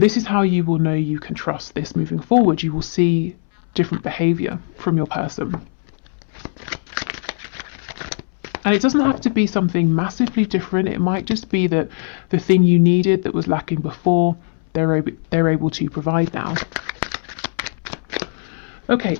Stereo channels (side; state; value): right; silent; 62 dB below the other